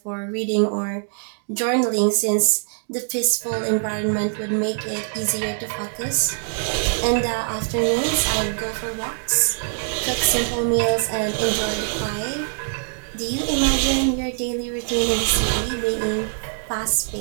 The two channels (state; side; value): silent; left; digital silence